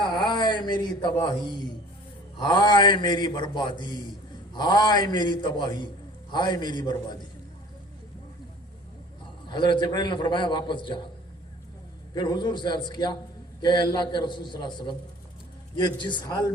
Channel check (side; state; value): both; normal; correlation 0.48